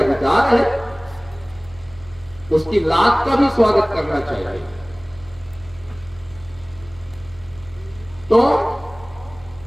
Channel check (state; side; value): noise; right; hum, 22 dB below the sound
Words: अधिकार है, उसकी लात का भी स्वागत करना चाहिए। तो